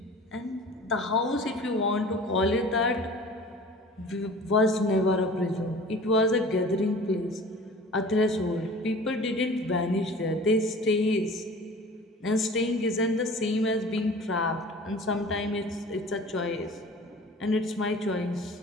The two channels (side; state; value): both; normal; correlation 0.43